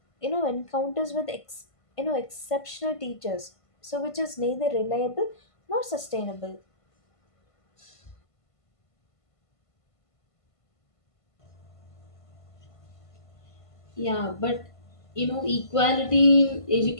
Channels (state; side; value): late; right; 1.5 ms